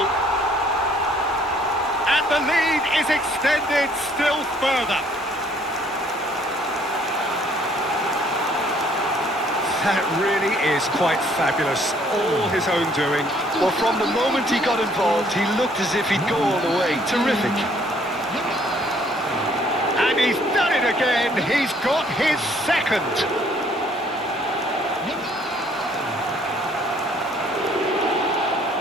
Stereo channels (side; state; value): both; normal; correlation 0.62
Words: And the lead is extended still further. That really is quite fabulous. All his own doing. Well, from the moment he got involved, he looked as if he'd go all the way. Terrific. And he's done it again. He's got his second.